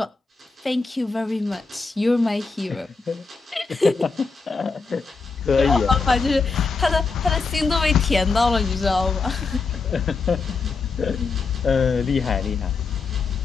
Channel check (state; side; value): quieter; right; 4.4 dB